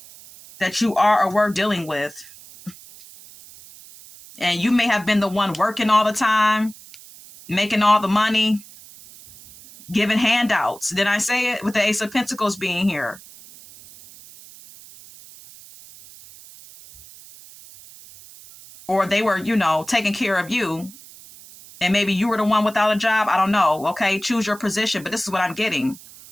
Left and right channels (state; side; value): noise; right; hiss, 20 dB below the sound